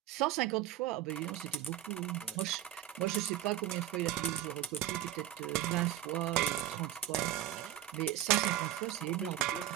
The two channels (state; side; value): quieter; left; 12.7 dB